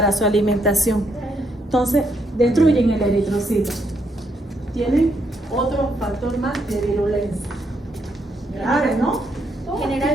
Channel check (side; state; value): both; normal; correlation 0.76